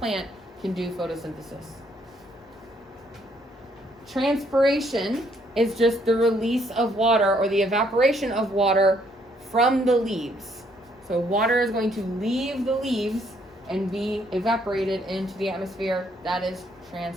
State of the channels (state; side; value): normal; both; correlation 0.68